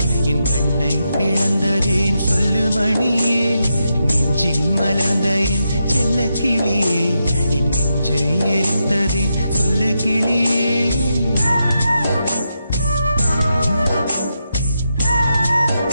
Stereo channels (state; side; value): inverted; both; correlation -0.85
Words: என் கண்ணை பிளந்ததேன் சொல்லு மணியே. நெஞ்சில் மலர்ந்த என் செல்ல கிளியே, என் நெஞ்சை எரித்ததேன் சொல்லு கிளியே.